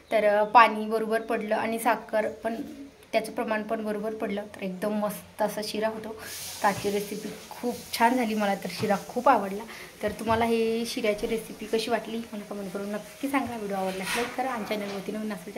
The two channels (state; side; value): identical; both; correlation 1.00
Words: तर पाणी बरोबर पडलं आणि साखर पण त्याचं प्रमाण पण बरोबर पडलं तर एकदम मस्त असा शिरा होतो. आजची रेसिपी खूप छान झाली. मला तर शिरा खूप आवडला. तर तुम्हाला हे शिऱ्याची रेसिपी कशी वाटली मला कमेंट करून नक्की सांगा. व्हिडिओ आवडल्यास लाईक करा आणि चॅनलवरती नवीन असेल